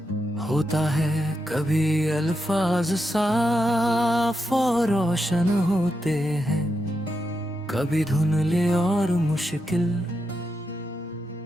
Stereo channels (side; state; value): both; normal; correlation 0.85